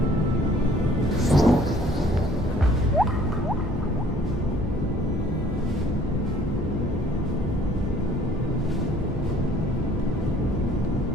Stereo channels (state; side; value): normal; both; correlation 0.57